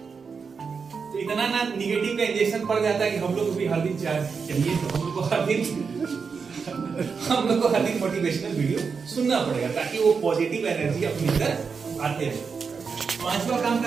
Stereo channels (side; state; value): left; quieter; 5.5 dB